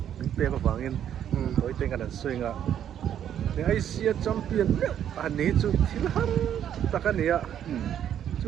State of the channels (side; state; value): left; quieter; 9.9 dB